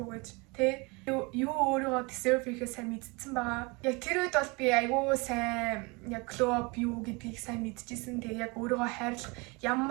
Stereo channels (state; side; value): quieter; left; 27.8 dB